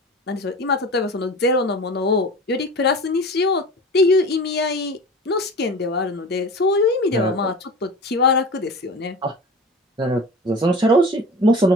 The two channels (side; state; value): both; normal; correlation 0.35